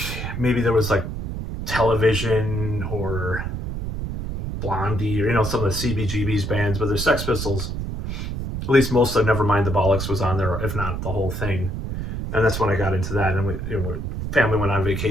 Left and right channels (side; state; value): right; noise; rumble, 5 dB below the sound